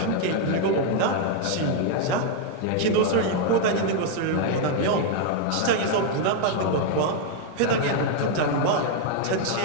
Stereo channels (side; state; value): both; different; correlation 0.00